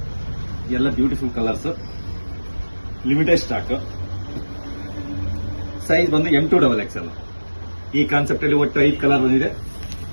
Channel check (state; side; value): inverted; both; correlation -1.00